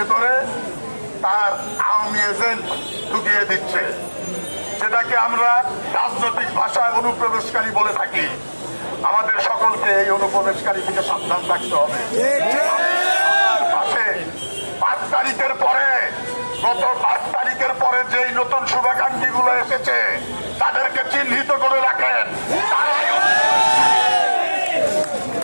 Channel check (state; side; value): inverted; both; correlation -1.00